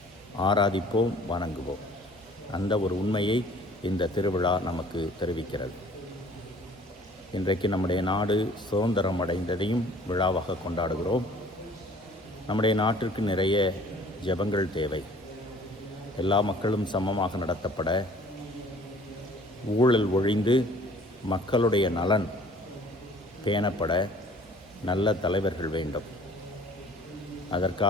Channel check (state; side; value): normal; both; correlation 0.52